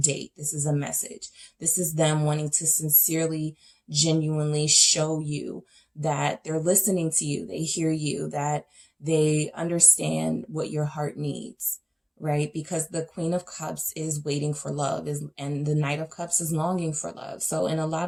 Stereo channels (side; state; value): both; identical; correlation 1.00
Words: This is a message. This is them wanting to sincerely, genuinely show you that they're listening to you. They hear you, that they understand what your heart needs. Right? Because the Queen of Cups is waiting for love, and the Knight of Cups is longing for love. So in a